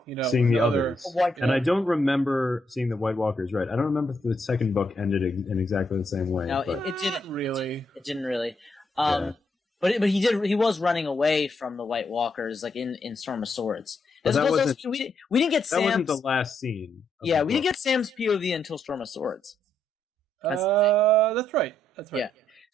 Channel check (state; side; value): normal; both; correlation 0.77